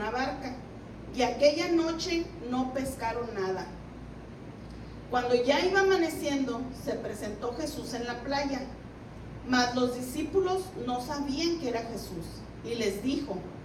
barca, y aquella noche no pescaron nada. Cuando ya iba amaneciendo, se presentó Jesús en la playa, mas los discípulos no sabían que era Jesús, y les dijo:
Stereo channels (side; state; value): both; identical; correlation 1.00